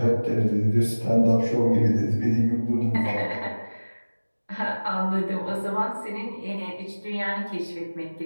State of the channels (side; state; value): both; inverted; correlation -1.00